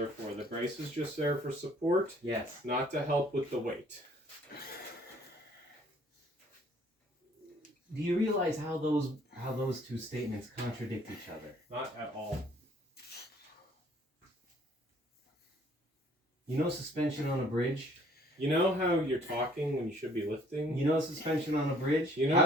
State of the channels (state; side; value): normal; both; correlation 0.59